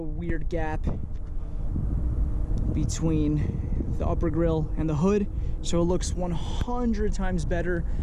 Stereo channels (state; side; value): identical; both; correlation 1.00